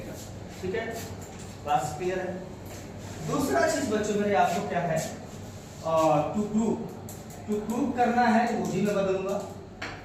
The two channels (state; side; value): identical; both; correlation 1.00